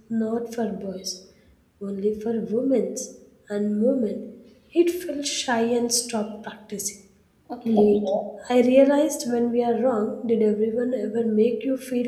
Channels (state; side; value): identical; both; correlation 1.00